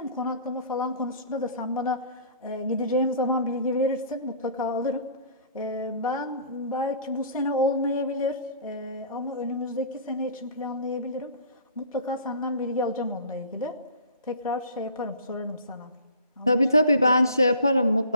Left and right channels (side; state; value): both; inverted; correlation -0.47